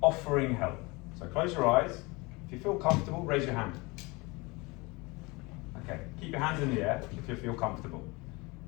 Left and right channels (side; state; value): right; quieter; 25.3 dB